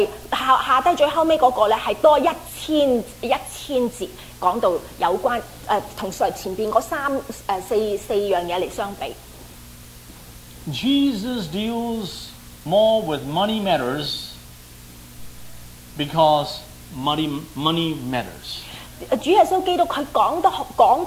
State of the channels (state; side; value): identical; both; correlation 1.00